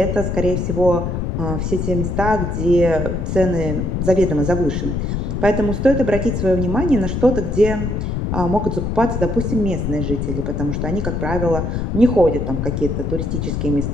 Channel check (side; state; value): left; noise; rumble, 1 dB below the sound